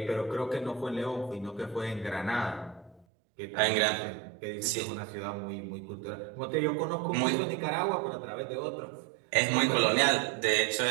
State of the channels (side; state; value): left; drops out; at 3.1 s